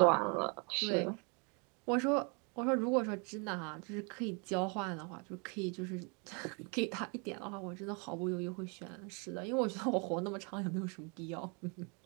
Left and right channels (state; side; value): quieter; left; 34.2 dB